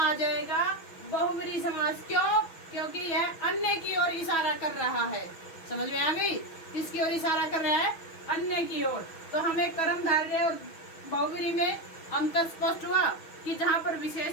जाएगा बहुव्रीहि समास। क्यों? क्योंकि यह अन्य की ओर इशारा कर रहा है। समझ में आ गई? किसकी ओर इशारा कर रहा है? अन्य की ओर। तो हमें कर्मधारय और बहुव्रीहि में अंतर स्पष्ट हुआ कि जहां पर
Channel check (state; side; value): late; right; 6.2 ms